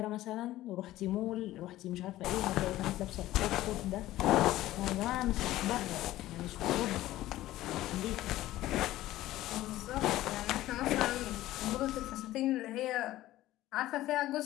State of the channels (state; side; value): quieter; right; 15.4 dB